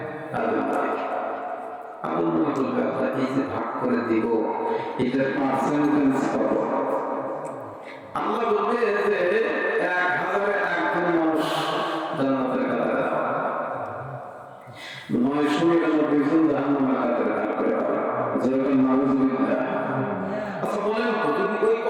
আদম নবীকে। আদম নবী বলবে, আল্লাহ এই যে ভাগ করে দিব, এটার পার্সেন্টেজ কত? আল্লাহ বলবে যে 1000-এ 1 মানুষ জান্নাতের কাতারে দাও, 999 জন জাহান্নামের কাতারে দাও করে দাও। যেরকম নাউযুবিল্লাহ। আচ্ছা বলেন তো, যদি ওই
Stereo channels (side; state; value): both; identical; correlation 1.00